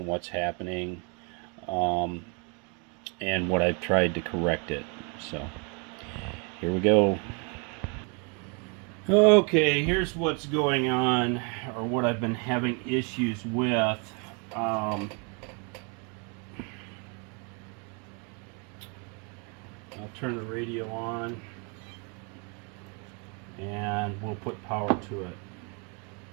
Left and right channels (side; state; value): left; quieter; 34.9 dB